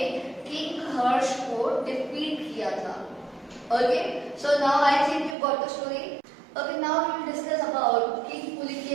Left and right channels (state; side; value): drops out; left; at 5.4 s